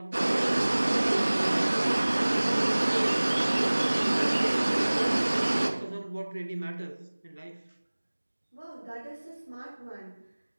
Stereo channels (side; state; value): both; inverted; correlation -1.00